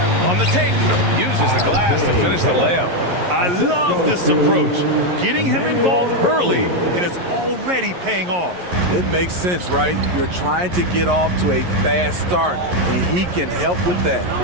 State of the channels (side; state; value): left; late; 11 ms